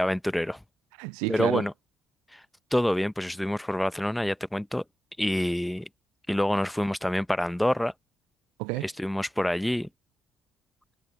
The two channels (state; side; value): normal; both; correlation 0.93